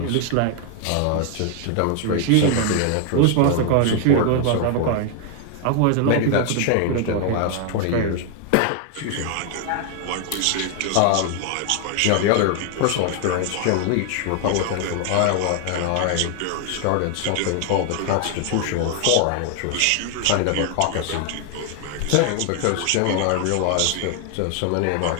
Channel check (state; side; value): different; both; correlation 0.00